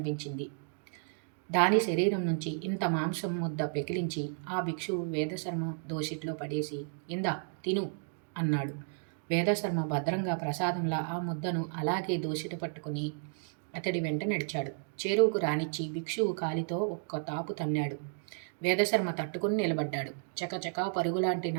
దాని శరీరం నుంచి ఇంత మాంసం ముద్ద పెకిలించి ఆ భిక్షువు వేదశర్మ దోసిట్లో పడేసి ఇందా తిను అన్నాడు. వేదశర్మ భద్రంగా ప్రసాదంలా ఆ ముద్దను అలాగే దోసిట పట్టుకుని అతడి వెంట నడిచాడు. చేరువుకు రానిచ్చి భిక్షువు కాలితో ఒక్క తాపు తన్నాడు. వేదశర్మ తట్టుకుని నిలబడ్డాడు. చకచకా పరుగులాంటి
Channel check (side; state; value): left; silent; digital silence